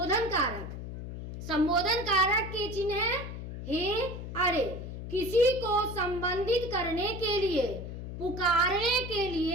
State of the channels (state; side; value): noise; left; hum, 8 dB below the sound